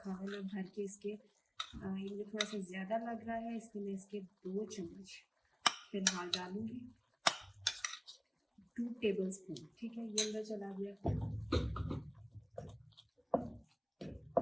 है मैं भर के इसके, ये मुझे थोड़ा सा ज़्यादा लग रहा है, इसलिए मैं इसके 2 चम्मच फिलहाल डालूंगी, 2 टेबल स्पून, ठीक है। ये अंदर चला गया।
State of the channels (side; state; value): both; identical; correlation 1.00